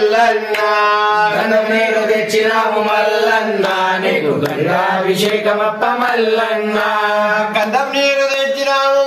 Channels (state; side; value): identical; both; correlation 1.00